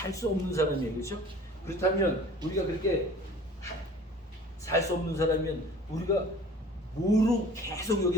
수 없는 사람이에요. 그렇죠? 그렇다면 우리가 그렇게 살 수 없는 사람이면 우리가 뭐로 계속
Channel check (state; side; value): normal; both; correlation 0.46